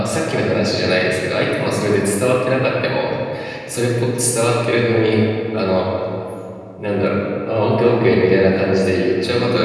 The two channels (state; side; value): identical; both; correlation 1.00